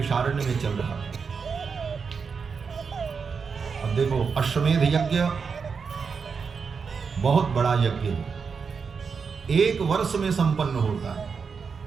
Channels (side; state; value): left; quieter; 5.6 dB